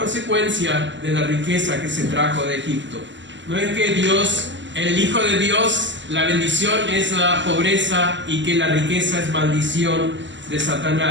de la riqueza que se trajo de Egipto. No es que Dios, el Hijo de Dios, la bendición es la pobreza y que la riqueza es maldición de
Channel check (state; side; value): late; left; 0.54 ms